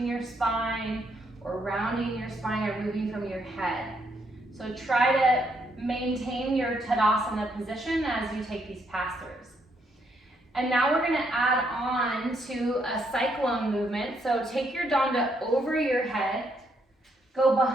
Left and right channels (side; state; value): both; normal; correlation 0.74